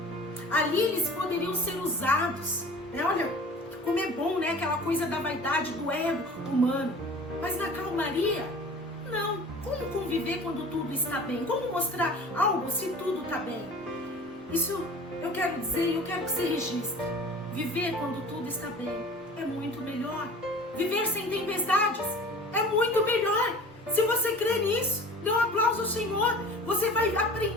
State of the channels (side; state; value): both; normal; correlation 0.42